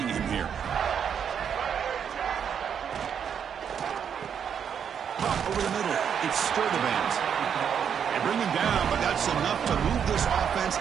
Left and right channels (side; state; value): left; quieter; 7.8 dB